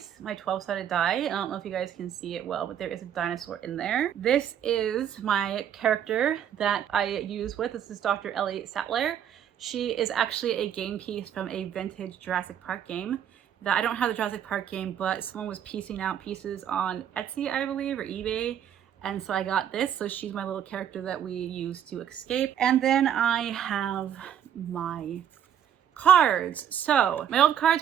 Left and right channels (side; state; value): left; quieter; 9.5 dB